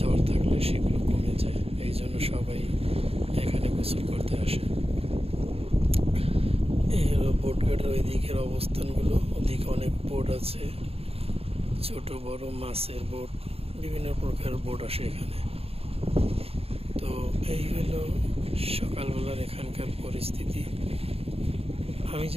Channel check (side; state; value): left; late; 0.28 ms